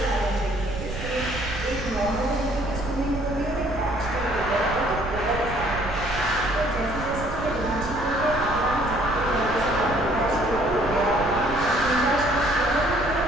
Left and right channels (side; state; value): right; noise; rumble, 8 dB below the sound